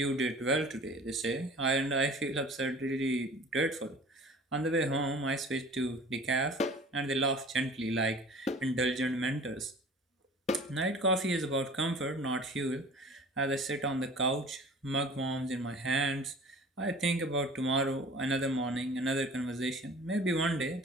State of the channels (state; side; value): normal; both; correlation 0.44